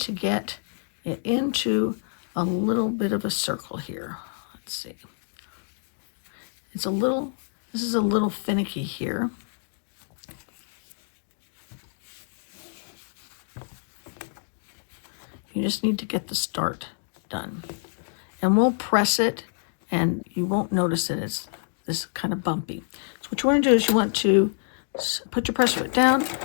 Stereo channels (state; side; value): silent; right; digital silence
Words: get it into a little bit of a circle here. Let's see. This is a little finicky here. You just need to get the start done. And we'll press it and you won't notice it. It's this kind of bumpy. So what you want to do is you want to put your pressure foot down,